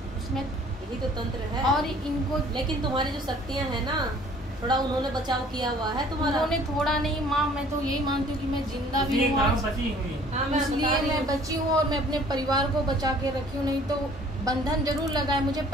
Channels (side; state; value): both; normal; correlation 0.54